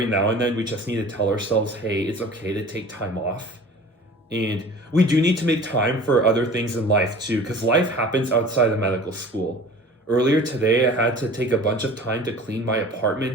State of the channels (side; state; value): both; normal; correlation 0.42